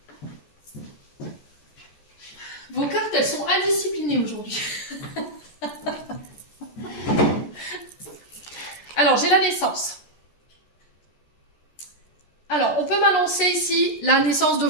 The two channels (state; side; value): late; right; 14 ms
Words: Vos cartes, elles sont indisciplinées aujourd'hui. Alors, j'ai la naissance. Alors, on peut m'annoncer ici la naissance de